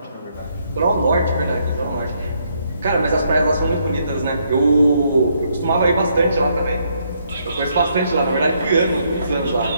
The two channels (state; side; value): inverted; both; correlation -0.73